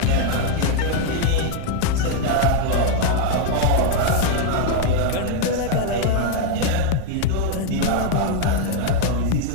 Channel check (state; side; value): different; both; correlation 0.00